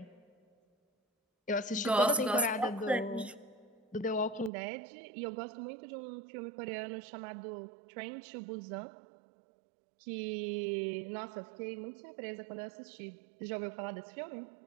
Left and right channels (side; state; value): left; drops out; at 4.5 s